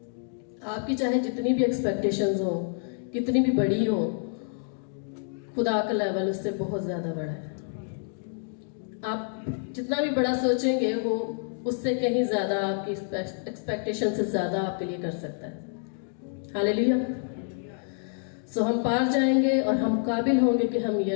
आपकी चाहे जितनी भी एक्सपेक्टेशंस हो, कितनी भी बड़ी हो, खुदा का लेवल उससे बहुत ज़्यादा बड़ा है। आप जितना भी बड़ा सोचेंगे, वो उससे कहीं ज़्यादा आपकी एक्सपेक्टेशन से ज़्यादा आपके लिए कर सकता है। हालेलुया। सो हम पार जाएंगे और हम काबिल होंगे कि हम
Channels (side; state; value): right; silent; digital silence